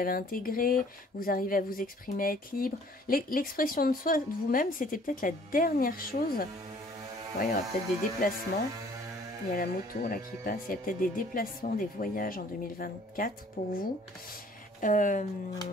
intégrée, vous arrivez à vous exprimer, à être libre. L'expression de soi, de vous-même, c'était peut-être la dernière chose. Ouais, il y aura peut-être des déplacements. Il y a la moto là qui passe. Il y a peut-être des déplacements, des voyages en 2024 pour vous.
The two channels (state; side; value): normal; both; correlation 0.56